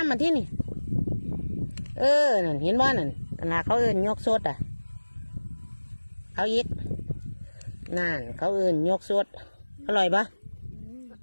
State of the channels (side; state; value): both; inverted; correlation -1.00